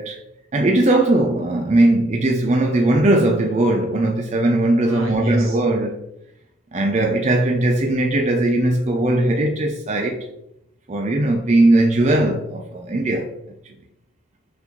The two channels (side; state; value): both; normal; correlation 0.71